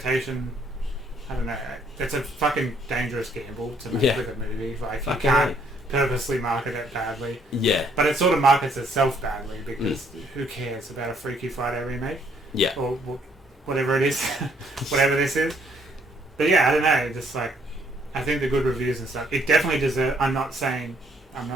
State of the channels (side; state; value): both; normal; correlation 0.67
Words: I don't know. It's a fucking dangerous gamble to make with a movie. Like, you can't purposely market it badly. Yeah. But it sort of markets itself badly because who cares about a Freaky Friday remake? Yeah. Or whatever it is. Whatever this is. But yeah, I don't know. Just like, I think the good reviews and stuff, it definitely deserves... I'm not